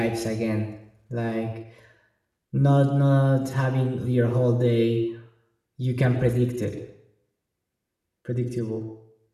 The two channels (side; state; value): both; identical; correlation 1.00